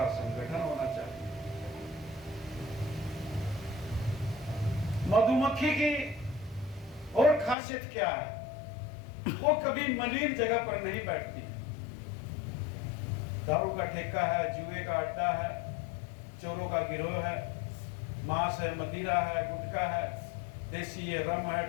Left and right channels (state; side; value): drops out; right; at 7.6 s